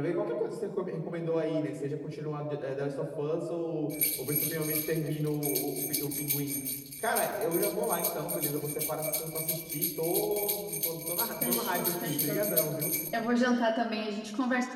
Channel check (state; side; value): identical; both; correlation 1.00